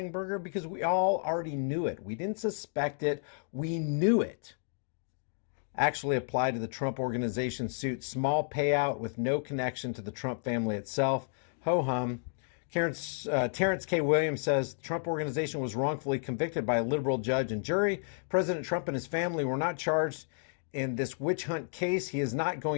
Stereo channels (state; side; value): silent; right; digital silence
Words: burger because we all already knew it. We didn't suspect it. We knew it. Actually applied to the Trump Organization suit. Small payout with no connection to the Trump family itself. Ho-hum. Terrence K. Williams says the Trump Organization was wrongfully convicted by a liberal judge and jury. President Trump and his family were not charged in this witch hunt case. He is not